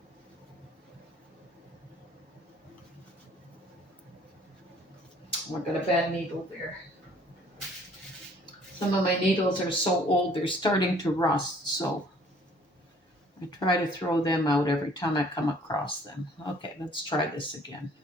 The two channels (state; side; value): normal; both; correlation 0.57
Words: Oh, I got a bad needle there. Some of my needles are so old, they're starting to rust, so I try to throw them out every time I come across them. Okay, let's try this again.